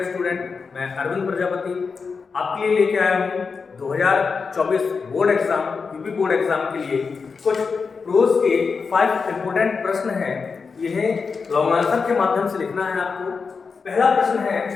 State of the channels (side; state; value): right; quieter; 5.1 dB